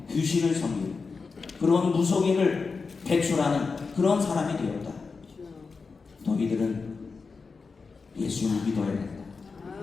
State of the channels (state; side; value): quieter; right; 4.6 dB